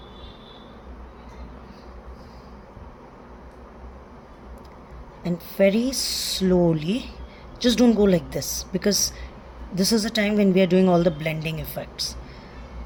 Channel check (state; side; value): identical; both; correlation 1.00